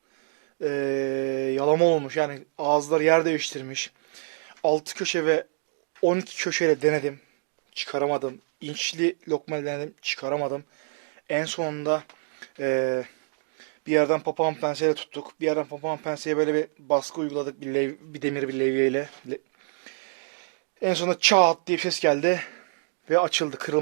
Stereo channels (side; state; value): left; silent; digital silence